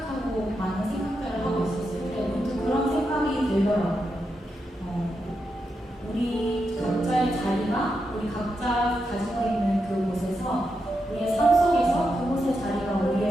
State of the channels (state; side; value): normal; both; correlation 0.86